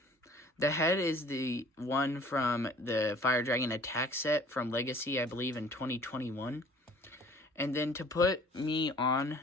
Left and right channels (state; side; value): normal; both; correlation 0.51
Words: The head is the one from the Fire Dragon Attack set from Legacy, I believe, in 2021. And then to put me on